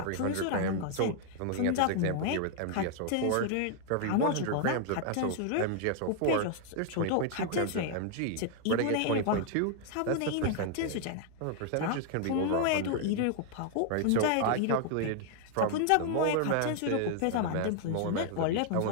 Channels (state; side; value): different; both; correlation 0.00